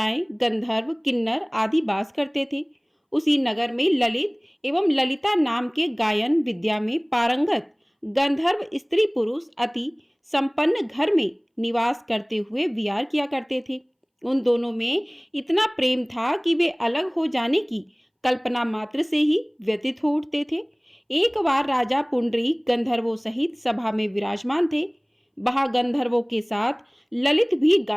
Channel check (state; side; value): identical; both; correlation 1.00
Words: गंधर्व, किन्नर आदि वास करते थे। उसी नगर में ललित एवं ललिता नाम के गायन विद्या में पारंगत गंधर्व स्त्री पुरुष अति संपन्न घर में निवास करते हुए विहार किया करते थे। उन दोनों में इतना प्रेम था कि वे अलग हो जाने की कल्पना मात्र से ही व्यतीत हो उठते थे। एक बार राजा पुंडरीक गंधर्वों सहित सभा में विराजमान थे। वहां गंधर्वों के साथ ललित भी